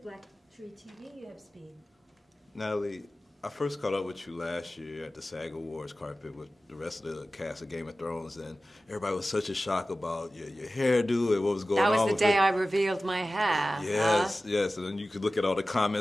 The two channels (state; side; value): normal; both; correlation 0.96